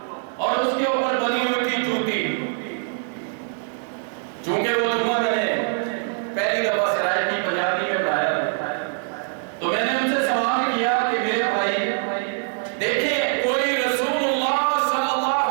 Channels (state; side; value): silent; left; 63 dB below the other